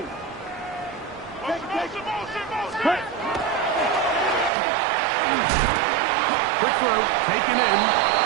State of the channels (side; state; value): left; drops out; at 4.5 s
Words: Cut. Quick throw, taken in.